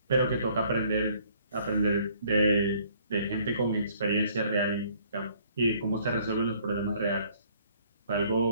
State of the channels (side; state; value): both; inverted; correlation -0.60